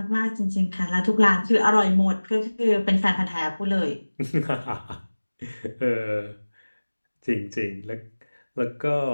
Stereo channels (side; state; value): both; inverted; correlation -1.00